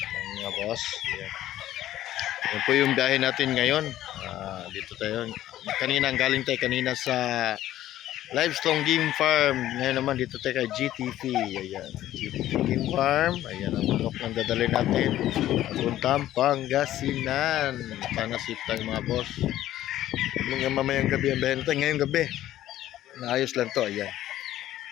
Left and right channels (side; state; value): right; quieter; 13.4 dB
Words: mga boss. Ayan. Yan po yung biyahe natin ngayon. Dito tayo. Kanina, galing tayo kanina sa Livestrong Game Farm. Ngayon naman dito tayo kay GTP. Ayan. GTP Game Farm. Ayan ang manok ng dadalhin natin. Papuntang Pangasinan. Pangasip tayo mga boss. Hanggang mamayang gabi ang biyahe natin. Ngayong gabi. Naayos lang to. Ayan.